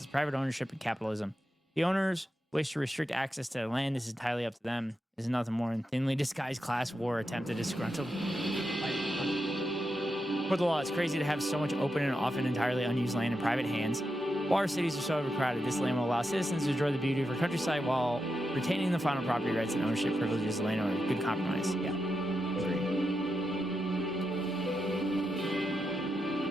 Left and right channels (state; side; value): normal; both; correlation 0.87